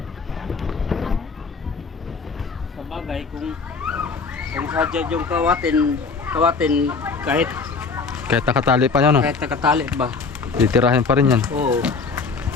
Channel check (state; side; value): quieter; right; 4.7 dB